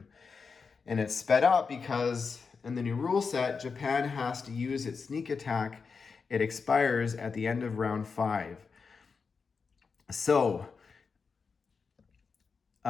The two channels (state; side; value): quieter; right; 5.2 dB